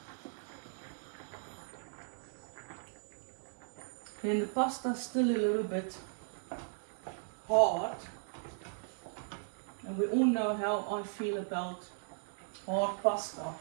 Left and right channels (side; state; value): left; silent; digital silence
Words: Okay, and the pasta's still a little bit hard. And we all know how I feel about hard pasta.